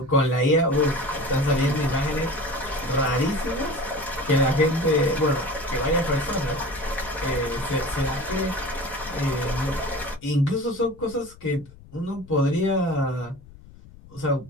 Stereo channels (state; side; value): noise; left; rumble, 21 dB below the sound